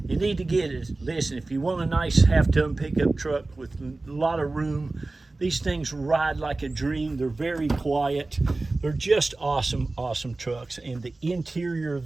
need to get it. Listen, if you want a nice half-ton pickup truck with a lot of room, These things ride like a dream. They're very quiet. They're just awesome, awesome trucks. And the interior of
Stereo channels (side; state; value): left; quieter; 3.2 dB